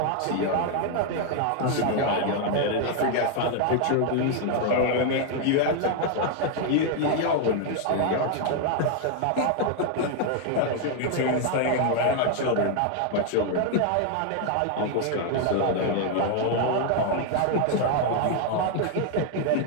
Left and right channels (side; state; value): both; different; correlation 0.00